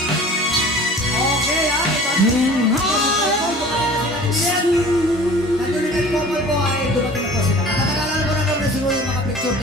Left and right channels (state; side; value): normal; both; correlation 0.45